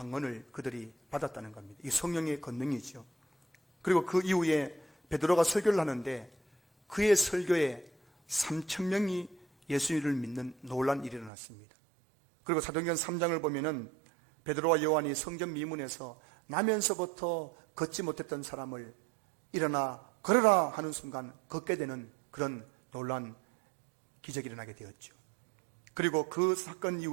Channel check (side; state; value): left; drops out; at 11.3 s